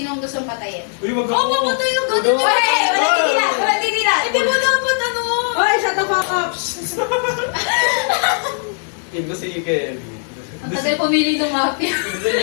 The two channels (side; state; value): right; silent; 55 dB below the other